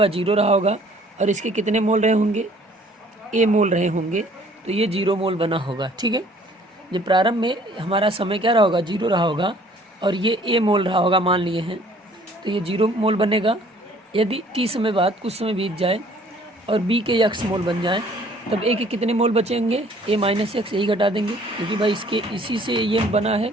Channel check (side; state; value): both; normal; correlation 0.56